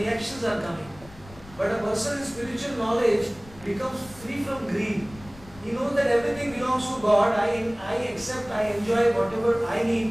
are coming. But a person in spiritual knowledge becomes free from greed. He knows that everything belongs to God. I accept, I enjoy whatever I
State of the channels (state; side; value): noise; left; rumble, 20 dB below the sound